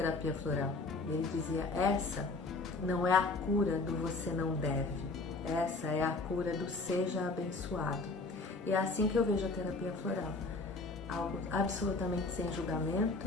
floral, ele dizia, essa não é a cura do você não deve, essa é a cura do seja abençoado. E é assim que eu vejo a terapia floral, algo absolutamente sem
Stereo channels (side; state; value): right; quieter; 3.5 dB